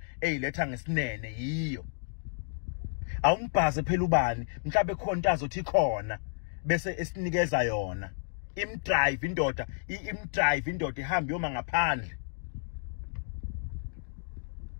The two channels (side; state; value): right; silent; digital silence